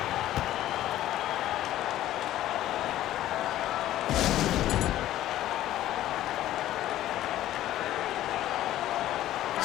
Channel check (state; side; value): quieter; right; 13.6 dB